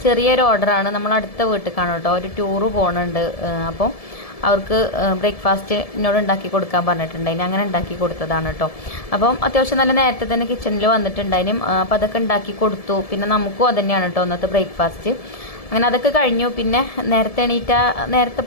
ചെറിയൊരു ഓർഡറാണ്. നമ്മൾ അടുത്ത വീട്ടിലേക്കാണ് കേട്ടോ, ഒരു ടൂറ് പോകുന്നുണ്ട്. അപ്പം അവർക്ക് ബ്രേക്ക്ഫാസ്റ്റ് എന്നോട് ഉണ്ടാക്കി കൊടുക്കാൻ പറഞ്ഞിട്ടുണ്ടായിന്. അങ്ങനെ ഉണ്ടാക്കി കൊടുത്തതാണ് കേട്ടോ. അപ്പം അത്യാവശ്യം നല്ല നേരത്തെ തന്നെ കിച്ചണിൽ വന്നിട്ടുണ്ടായിനും. അപ്പം അതൊക്കെ ഉണ്ടാക്കി കൊടുത്തു. പിന്നെ നമുക്കും അത് തന്നെയാണ് കേട്ടോ ഇന്നത്തെ ബ്രേക്ക്ഫാസ്റ്റ്. അങ്ങനെ അതൊക്കെ കഴിഞ്ഞു. പിന്നെ നേരത്തെ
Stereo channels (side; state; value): right; late; 1.7 ms